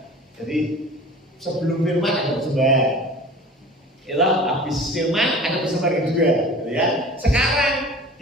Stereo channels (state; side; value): normal; both; correlation 0.41